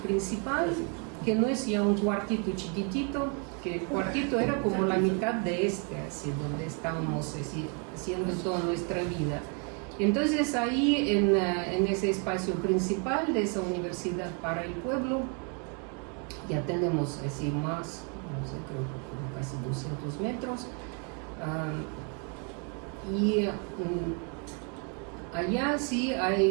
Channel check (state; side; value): quieter; left; 37.8 dB